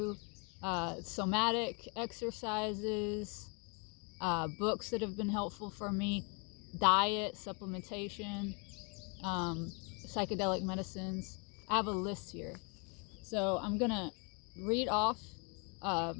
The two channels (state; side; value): quieter; right; 34.1 dB